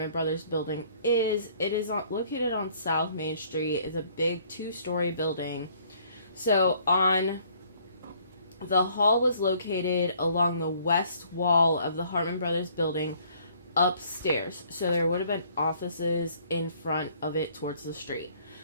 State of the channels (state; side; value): inverted; both; correlation -0.60